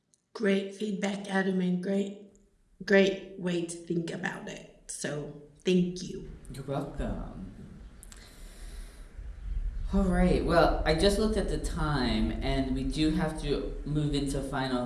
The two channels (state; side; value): identical; both; correlation 1.00